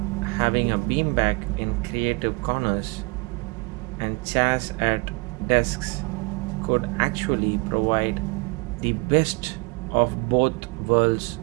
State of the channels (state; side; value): quieter; left; 29.4 dB